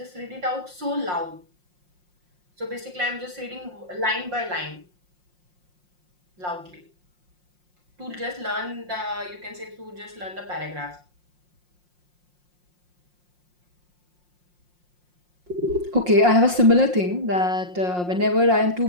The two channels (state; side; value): late; left; 5.6 ms